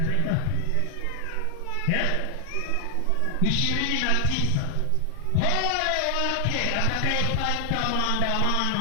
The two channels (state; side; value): different; both; correlation 0.00